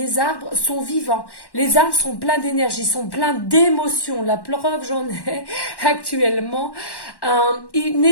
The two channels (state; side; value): late; right; 1.1 ms